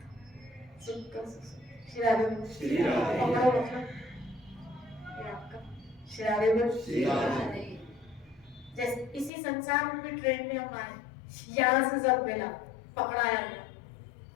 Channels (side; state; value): right; drops out; at 9.3 s